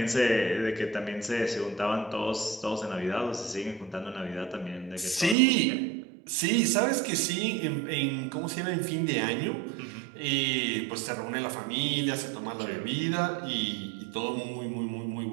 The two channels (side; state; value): left; drops out; at 5.4 s